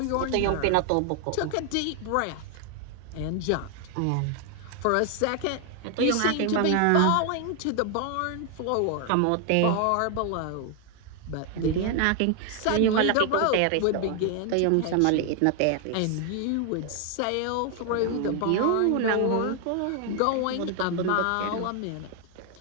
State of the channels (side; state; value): both; different; correlation 0.00